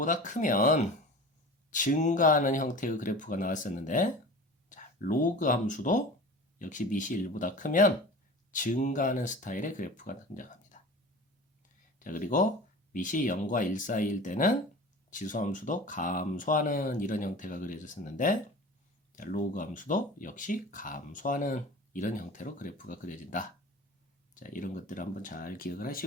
크면 증가하는 형태의 그래프가 나왔었는데 자, 로그 함수도 역시 밑이 1보다 크면 증가하는 스타일의 그래프가 등장합니다. 자, 그리고 밑이 0과 1 사이일 때는 지수함수도 감소하는 이런 형태가 그려졌었는데 자, 로그 함수도 역시 감소하는 이런 형태로 그래프가 그려진다. 자, 이런 것들을 한번 잘 기억을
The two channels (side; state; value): both; normal; correlation 0.37